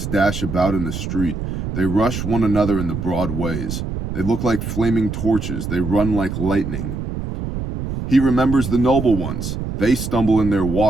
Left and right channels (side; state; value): right; noise; rumble, 5 dB below the sound